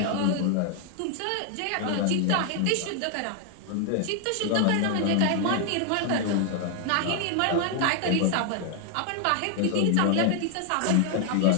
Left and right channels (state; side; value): different; both; correlation 0.00